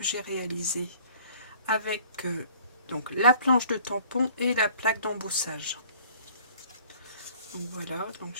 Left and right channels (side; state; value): both; inverted; correlation -0.52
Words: j'ai réalisée avec donc la planche de tampon et la plaque d'embossage. Donc voilà, donc